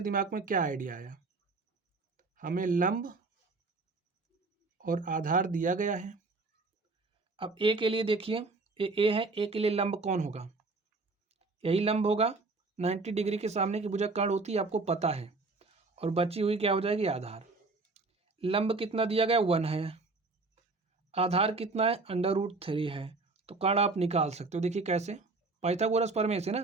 दिमाग में क्या आइडिया आया? हमें लंब और आधार दिया गया है। अब ए के लिए देखिए, ए है, ए के लिए लंब कौन होगा, यही लंब होगा। 90 डिग्री के सामने की भुजा कर्ण होती है, आपको पता है। और बची हुई क्या हो जाएगी, आधार। लंब कितना दिया गया, 1 है। आधार कितना है, √3 है। तो कर्ण आप निकाल सकते हो। देखिए कैसे, पाइथागोरस प्रमेय से ना,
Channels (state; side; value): quieter; left; 3.7 dB